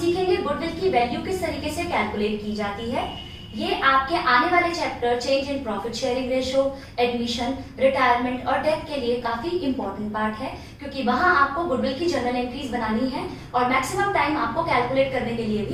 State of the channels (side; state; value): both; identical; correlation 1.00